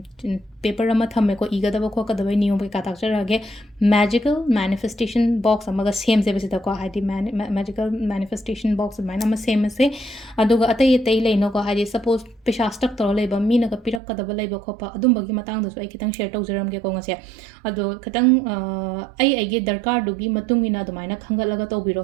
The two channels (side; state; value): left; drops out; at 14.0 s